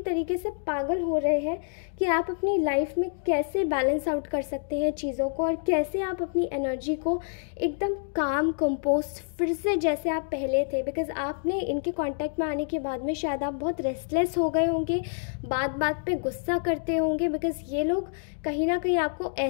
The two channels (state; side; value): silent; right; digital silence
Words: तरीके से पागल हो रहे हैं कि आप अपनी लाइफ में कैसे बैलेंस आउट कर सकते हैं चीज़ों को, और कैसे आप अपनी एनर्जी को एकदम काम कंपोस्ट फिर से जैसे आप पहले थे, बिकॉज आपने इनके कांटेक्ट में आने के बाद में शायद आप बहुत रेस्टलेस हो गए होंगे, बात बात पे गुस्सा करते होंगे, बिकॉज ये लोग कहीं ना कहीं आपको